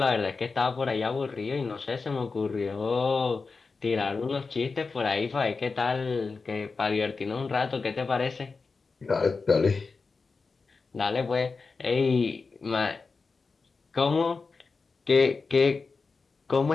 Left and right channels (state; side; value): quieter; right; 4.4 dB